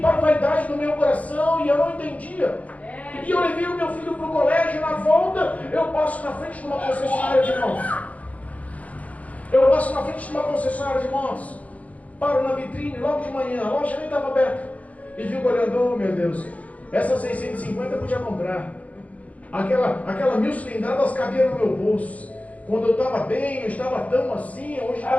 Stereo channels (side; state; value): right; late; 0.069 ms